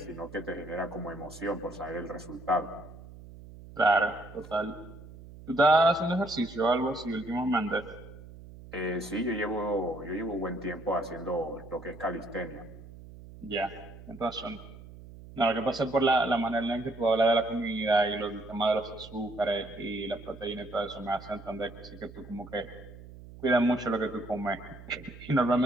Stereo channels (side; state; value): right; noise; hum, 17 dB below the sound